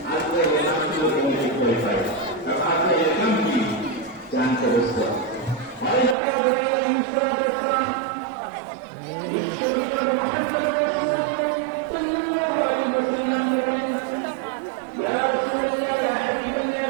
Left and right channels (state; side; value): drops out; left; at 6.2 s